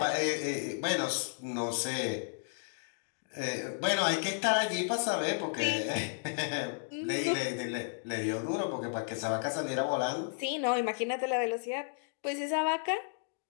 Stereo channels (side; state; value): right; silent; digital silence